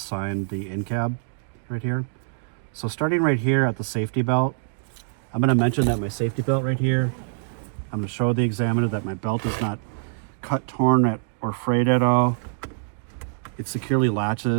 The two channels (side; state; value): left; silent; digital silence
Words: the in cab right here. So starting right here at the safety belt, I'm going to mention that my safety belt right here, I'm going to show the examiner that my belt is not cut, torn, or frayed at all. It securely